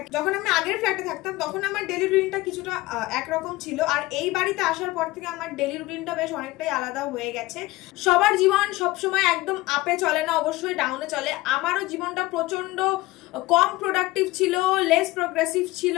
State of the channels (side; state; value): right; quieter; 19.4 dB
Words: যখন আমি আগের ফ্ল্যাটে থাকতাম তখন আমার ডেইলি রুটিনটা কিছুটা একরকম ছিল, আর এই বাড়িতে আসার পর থেকে আমার ডেইলি রুটিনটা বেশ অনেকটাই আলাদা হয়ে গেছে। সবার জীবন সবসময় একদম আপে চলে না, অবশ্যই ডাউনে চলে। আমারও জীবনটা প্রচন্ড কম প্রোডাক্টিভ ছিল, লেস প্রোগ্রেসিভ ছিল